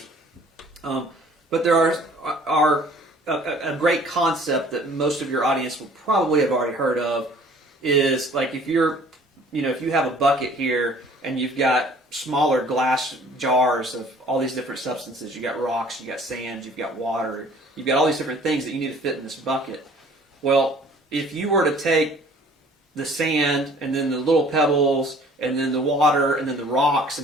But there are a great concept that most of your audience will probably have already heard of is like if if you have a bucket here and you've got smaller glass jars of all these different substances, you got rocks, you got sand, you've got water, you've got all these different things that you need to fit in this bucket. Well, if you were to take the sand and then the little pebbles and then the water and then the rocks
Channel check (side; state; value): both; normal; correlation 0.53